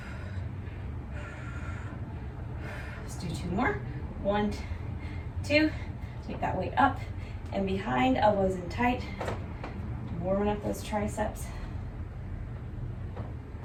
Let's do 2 more. 1, 2. Take that weight up and behind, elbows in tight, warming up those triceps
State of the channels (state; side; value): identical; both; correlation 1.00